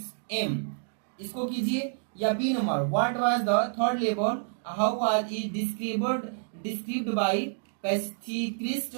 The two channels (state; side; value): silent; left; digital silence